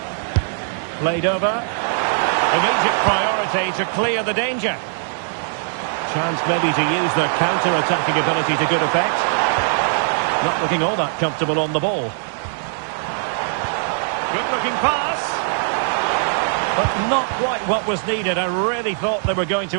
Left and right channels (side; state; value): left; silent; digital silence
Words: Played over. Immediate priority to clear the danger. Chance maybe to use the counter-attacking ability to good effect. Not looking all that comfortable on the ball. Good-looking pass. But not quite what was needed. I really thought they were going